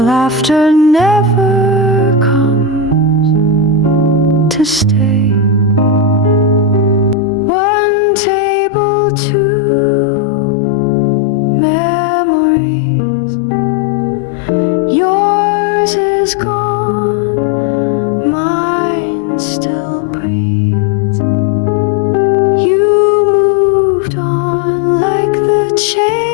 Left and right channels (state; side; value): drops out; right; at 7.2 s